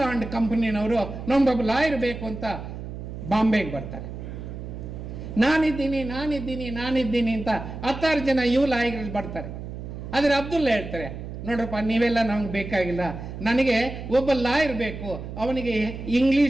ಅಂಡ್ ಕಂಪನಿನವರು, ನಮ್ಗೊಬ್ಬ ಲಾಯರ್ ಬೇಕು ಅಂತ ಬಾಂಬೆಗೆ ಬರ್ತಾರೆ. ನಾನಿದ್ದೀನಿ ಅಂತ 10 ಜನ ಲಾಯರ್ಗಳು ಬರ್ತಾರೆ. ಆದರೆ ಅಬ್ದುಲ್ಲಾ ಹೇಳ್ತಾರೆ, ನೋಡ್ರಪ್ಪ ನೀವೆಲ್ಲ ನಮ್ಗೆ ಬೇಕಾಗಿಲ್ಲ, ನನಗೆ ಒಬ್ಬ ಲಾಯರ್ ಬೇಕು, ಅವನಿಗೆ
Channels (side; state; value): right; noise; hum, 9 dB below the sound